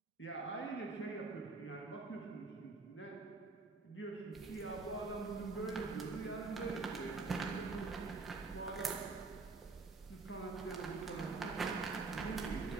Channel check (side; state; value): left; quieter; 3.9 dB